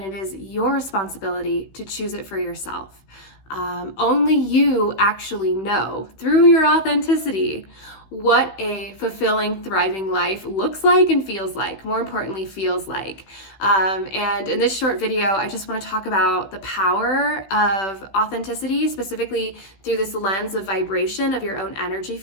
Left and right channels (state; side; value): late; right; 16 ms